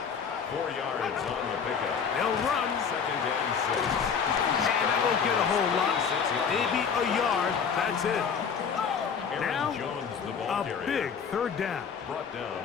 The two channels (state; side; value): quieter; right; 6.5 dB